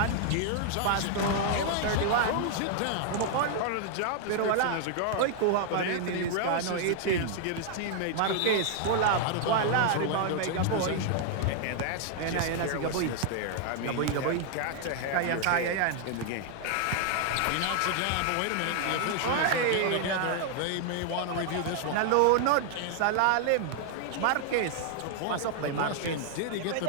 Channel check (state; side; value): different; both; correlation 0.00